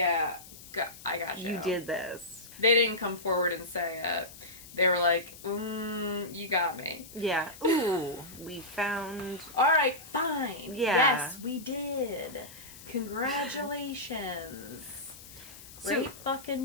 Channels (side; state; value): left; noise; hiss, 17 dB below the sound